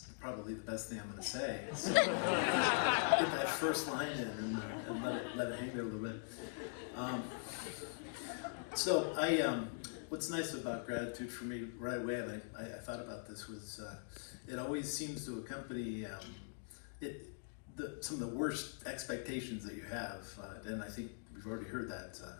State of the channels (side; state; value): right; silent; digital silence